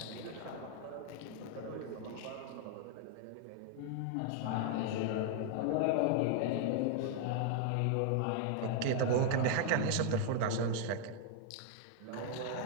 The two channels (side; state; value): both; different; correlation 0.00